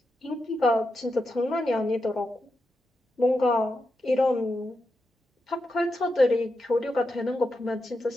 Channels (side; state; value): both; normal; correlation 0.87